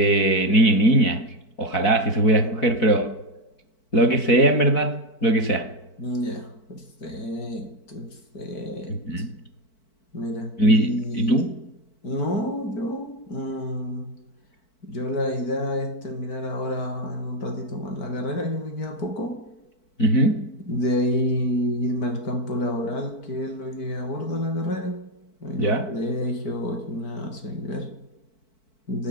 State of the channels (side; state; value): right; late; 4.5 ms